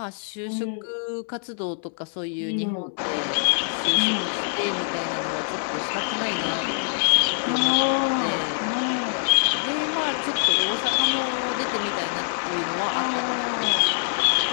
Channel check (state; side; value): silent; right; 62 dB below the other